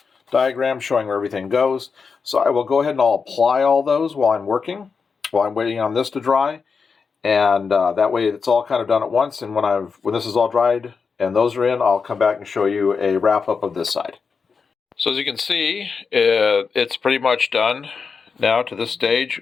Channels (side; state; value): right; quieter; 5.3 dB